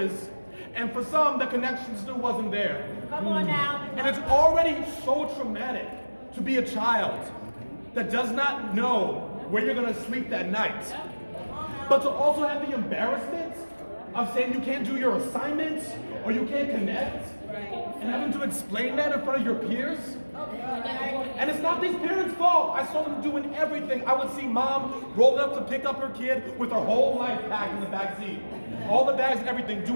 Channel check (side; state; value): both; inverted; correlation -1.00